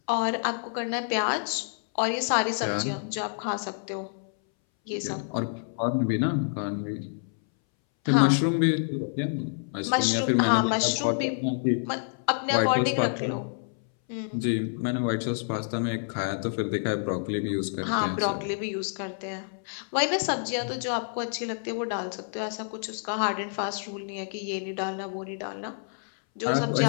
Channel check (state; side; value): silent; right; 59 dB below the other